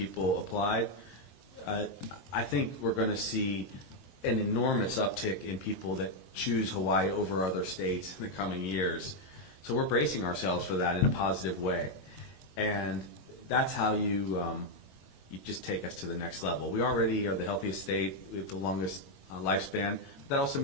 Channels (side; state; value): right; late; 22 ms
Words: applied. I think we're going to see an enormous uptick in people that choose Hawaii over other states in the coming years. So we're bracing ourselves for that in a positive way. And that's how you just take us to the next level. We already are the healthiest state. We have the longest lifespan. But that also